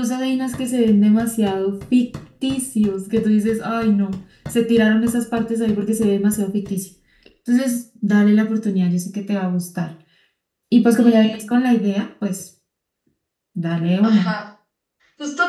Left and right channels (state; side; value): identical; both; correlation 1.00